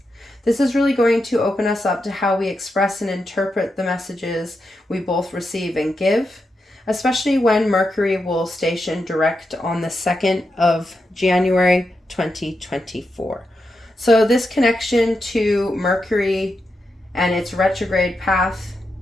This is really going to open us up to how we express and interpret the messages we both receive and give, especially when Mercury will station direct on the 2nd of January 2024. So this connection to Mercury and its retrograde path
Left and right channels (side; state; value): both; normal; correlation 0.86